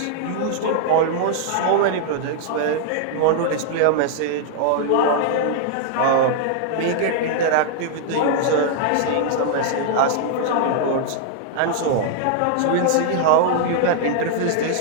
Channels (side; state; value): both; different; correlation -0.01